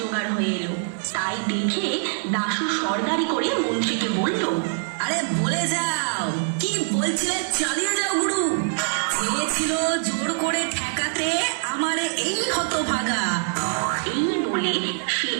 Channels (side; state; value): left; silent; digital silence